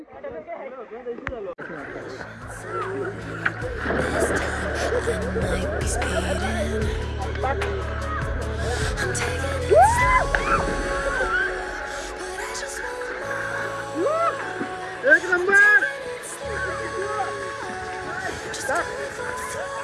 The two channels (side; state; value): both; identical; correlation 1.00